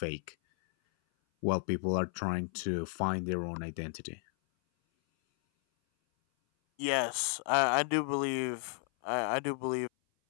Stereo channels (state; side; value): silent; right; 56 dB below the other